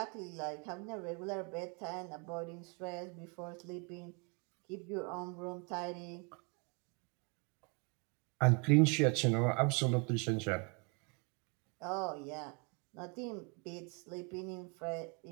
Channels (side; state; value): left; quieter; 33.8 dB